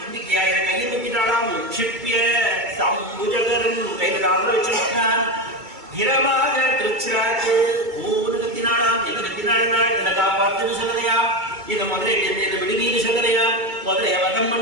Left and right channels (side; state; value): left; late; 2.3 ms